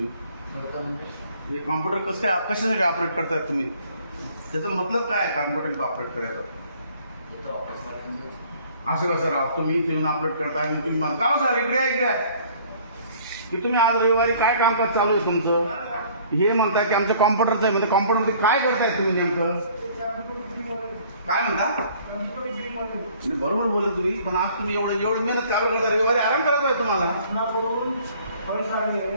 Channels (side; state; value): both; inverted; correlation -0.56